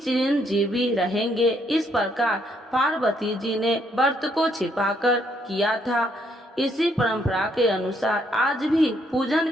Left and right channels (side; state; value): both; normal; correlation 0.71